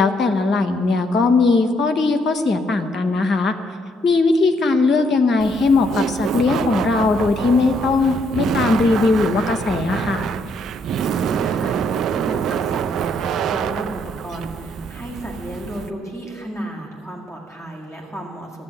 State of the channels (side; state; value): both; normal; correlation 0.72